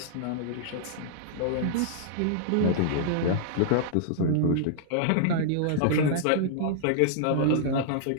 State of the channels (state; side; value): different; both; correlation -0.01